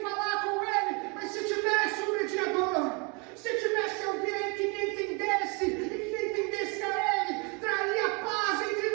falar com Ele. Mas se tivesse um mediador, se tivesse alguém que me entendesse e que entendesse a Ele, traria paz entre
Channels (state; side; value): quieter; left; 32.0 dB